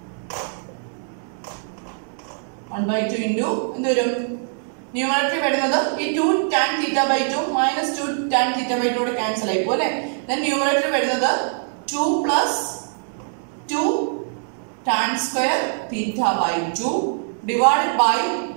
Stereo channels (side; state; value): left; silent; 64 dB below the other